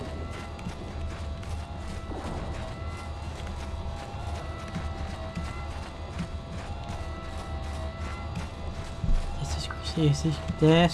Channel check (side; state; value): both; identical; correlation 1.00